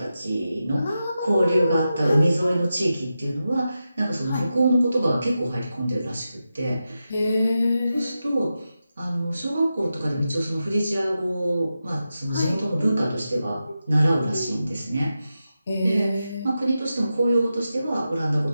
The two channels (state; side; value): inverted; both; correlation -0.90